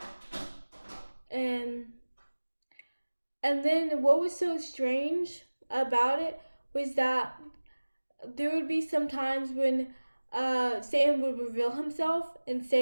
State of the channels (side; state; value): both; inverted; correlation -1.00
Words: And then what was so strange about it was that there would be some times when Satan would reveal himself and